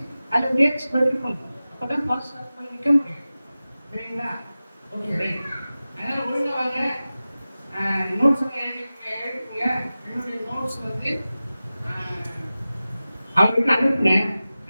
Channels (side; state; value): both; inverted; correlation -0.96